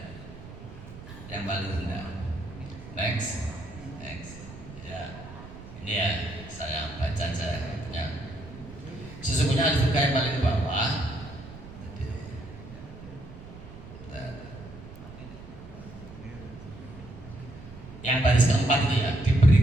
Yang paling rendah. Next. Ya. Ini ya, saya baca aja punya. Sesungguhnya surga yang paling bawah. Yang baris keempat itu ya,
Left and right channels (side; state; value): right; noise; rumble, 15 dB below the sound